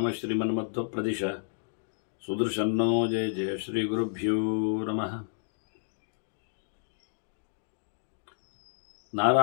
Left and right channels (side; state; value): right; silent; digital silence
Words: श्रीमन्मध्वप्रदिश सुदर्शन्नो जय जय श्रीगुरुभ्यो नमः